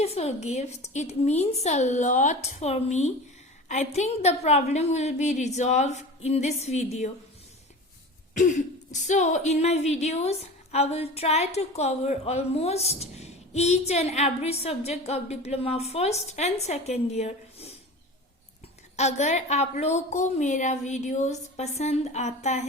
gift. It means a lot for me. I think the problem will be resolved in this video. So, in my videos, I will try to cover almost each and every subject of diploma first and second year. अगर आप लोगों को मेरा videos पसंद आता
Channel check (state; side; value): normal; both; correlation 0.34